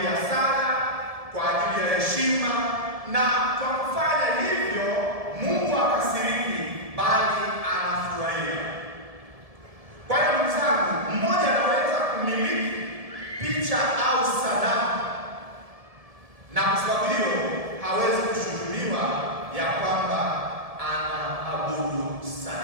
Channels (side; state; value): left; late; 1.7 ms